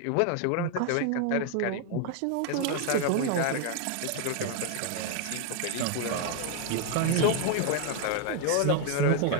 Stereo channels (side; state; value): both; different; correlation 0.00